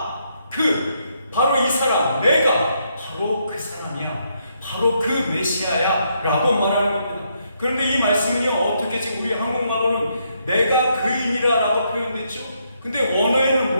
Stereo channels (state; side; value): inverted; both; correlation -0.76